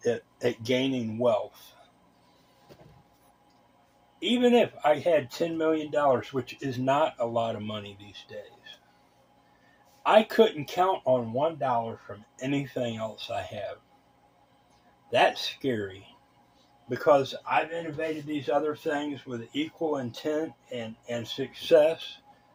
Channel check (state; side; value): identical; both; correlation 1.00